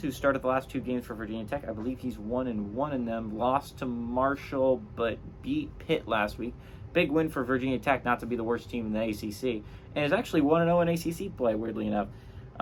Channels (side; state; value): both; identical; correlation 1.00